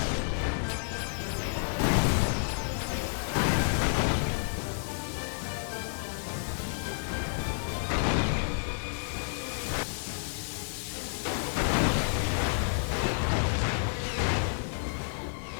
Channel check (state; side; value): silent; right; digital silence